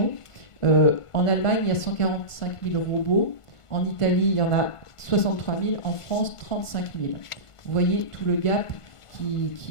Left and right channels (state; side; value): late; right; 1.5 ms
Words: En Allemagne, il y a 145 000 robots. En Italie, il y en a 63 000. En France, 35 000. Vous voyez tout le gap